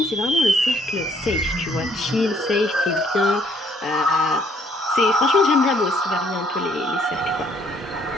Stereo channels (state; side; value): normal; both; correlation 0.65